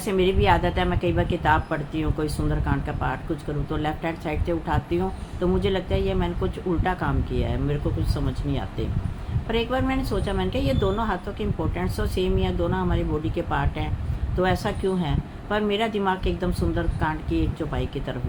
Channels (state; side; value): identical; both; correlation 1.00